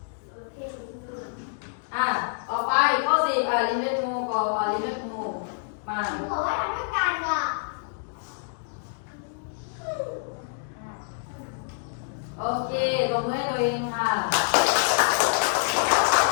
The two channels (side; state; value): right; silent; digital silence